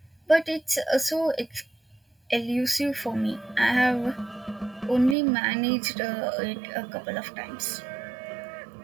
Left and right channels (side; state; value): left; drops out; at 5.2 s